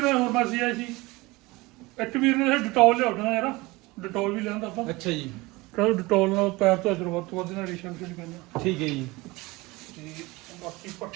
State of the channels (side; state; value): left; quieter; 22.3 dB